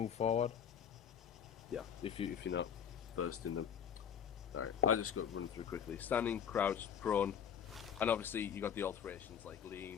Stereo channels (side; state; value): right; quieter; 8.1 dB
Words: forward. Yeah, if you're not versed in them. Alright, I just got to run through quickly. Standing, crouch, prone, and obviously you got the alterations like